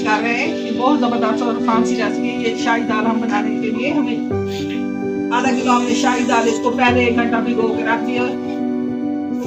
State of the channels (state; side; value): identical; both; correlation 1.00